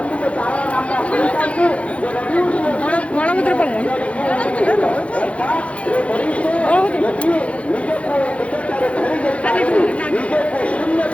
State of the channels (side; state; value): right; late; 0.063 ms